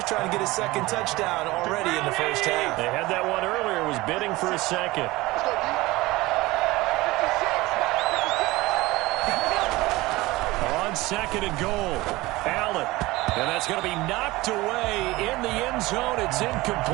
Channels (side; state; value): left; quieter; 20.0 dB